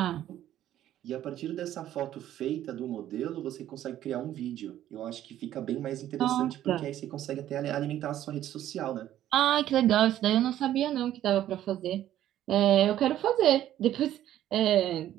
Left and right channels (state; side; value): quieter; left; 12.3 dB